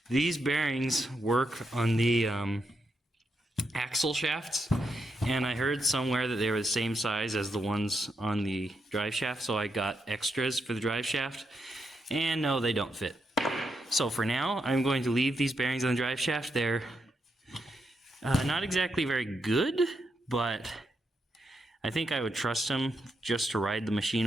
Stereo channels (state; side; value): normal; both; correlation 0.82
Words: These bearings work on the axle shafts, and I heard somewhere that they were the same size as the ones on the drive shaft, so I got extras for the drive shaft, and no, they don't fit. So for now, I'm going to leave these bearings on the drive shaft. They're not exactly very good, but I think I would trust them just to ride the machine